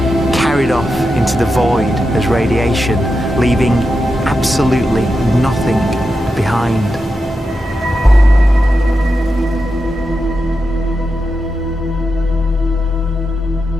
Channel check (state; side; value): normal; both; correlation 0.88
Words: carried off into the void as radiation, leaving absolutely nothing behind.